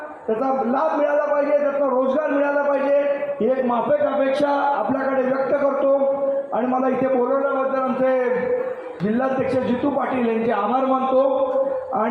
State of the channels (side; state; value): both; identical; correlation 1.00